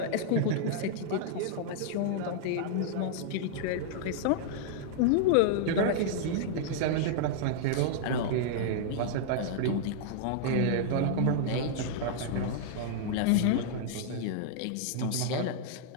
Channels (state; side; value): different; both; correlation -0.01